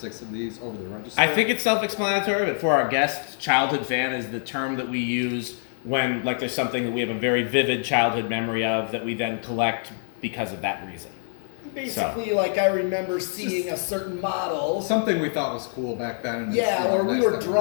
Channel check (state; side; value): silent; right; digital silence